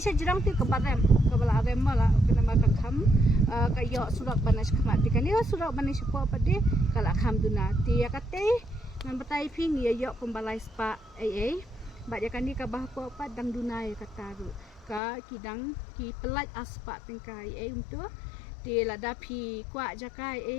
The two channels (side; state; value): right; drops out; at 15.0 s